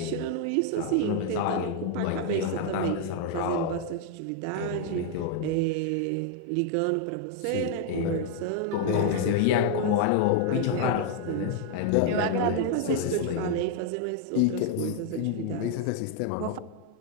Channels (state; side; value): different; both; correlation 0.00